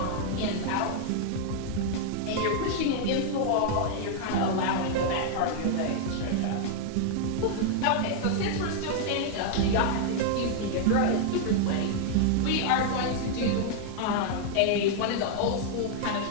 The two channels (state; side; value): different; both; correlation 0.00